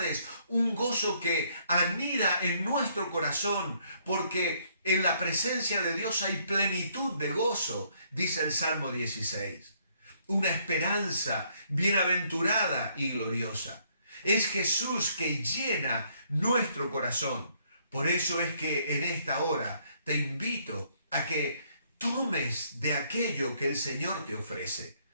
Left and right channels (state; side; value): inverted; both; correlation -0.68